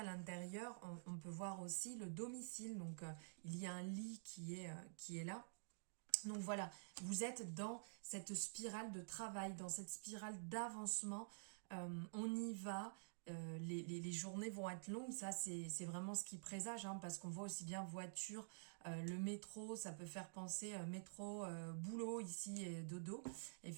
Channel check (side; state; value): left; silent; digital silence